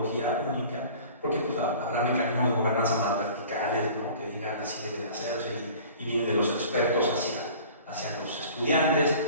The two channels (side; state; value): both; inverted; correlation -0.45